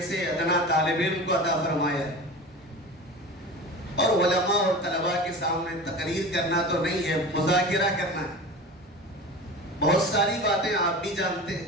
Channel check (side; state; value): both; normal; correlation 0.33